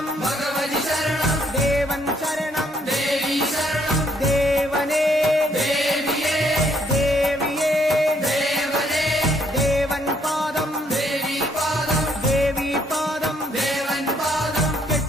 ഭഗവതി ശരണം ദേവൻ ശരണം ദേവി ശരണം ദേവനേ ദേവിയേ ദേവിയേ ദേവനേ ദേവൻ പാദം ദേവി പാദം ദേവി പാദം ദേവൻ പാദം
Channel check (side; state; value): both; normal; correlation 0.69